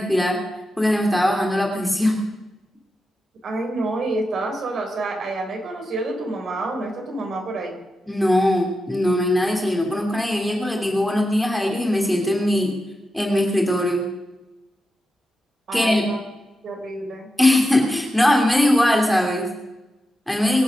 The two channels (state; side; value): normal; both; correlation 0.89